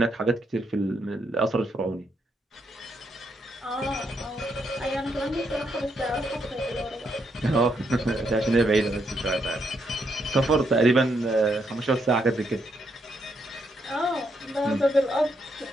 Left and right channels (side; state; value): both; normal; correlation 0.77